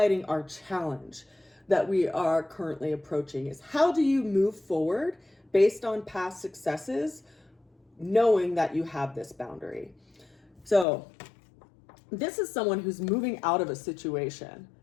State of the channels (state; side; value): drops out; right; at 10.9 s